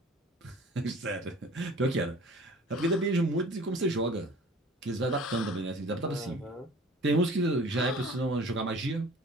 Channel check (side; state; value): both; normal; correlation 0.46